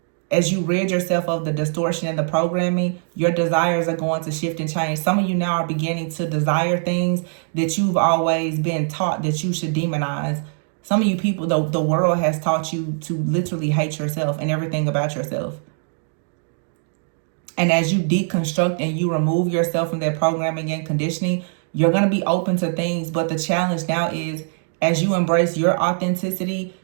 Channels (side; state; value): left; silent; 61 dB below the other